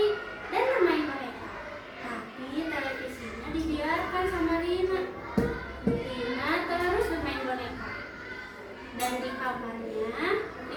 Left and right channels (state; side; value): identical; both; correlation 1.00